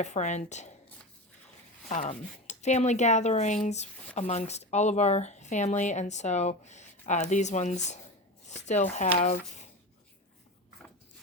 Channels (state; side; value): normal; both; correlation 0.25